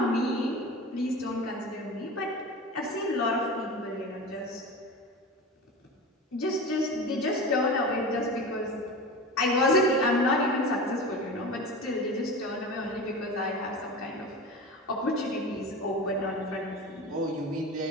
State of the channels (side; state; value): both; normal; correlation 0.30